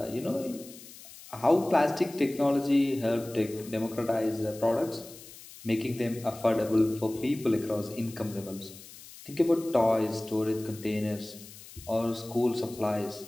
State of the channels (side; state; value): left; noise; hiss, 18 dB below the sound